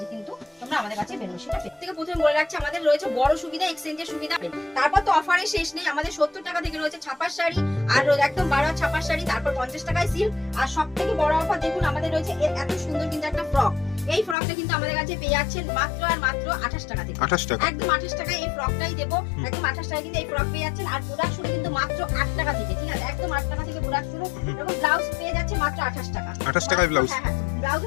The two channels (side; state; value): right; drops out; at 14.4 s